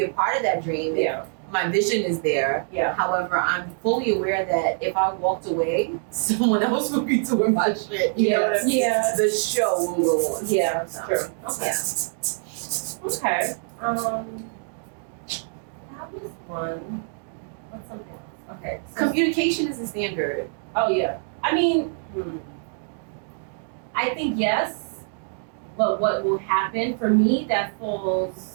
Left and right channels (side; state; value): left; silent; 61 dB below the other